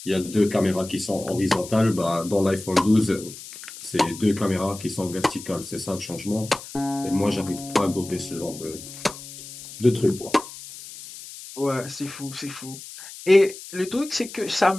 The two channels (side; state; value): left; noise; hiss, 14 dB below the sound